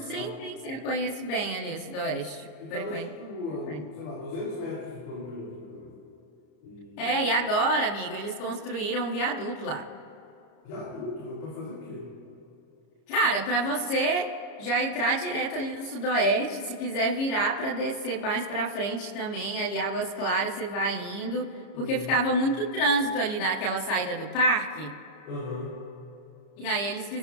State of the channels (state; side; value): late; right; 33 ms